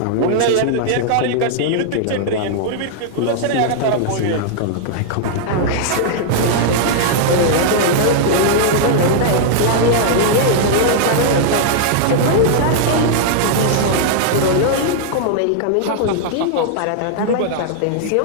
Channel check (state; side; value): different; both; correlation -0.01